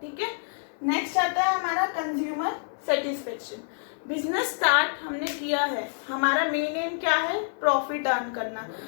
ठीक है। नेक्स्ट आता है हमारा कंज्यूमर सेटिस्फेक्शन। बिजनेस स्टार्ट हमने किया है, हमारा मेन एम क्या है, प्रॉफिट अर्न करना।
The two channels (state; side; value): silent; right; 60 dB below the other